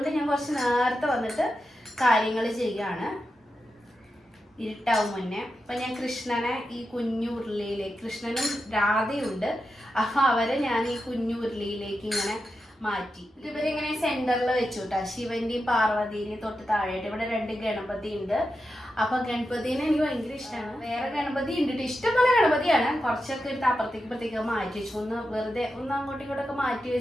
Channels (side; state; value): both; normal; correlation 0.89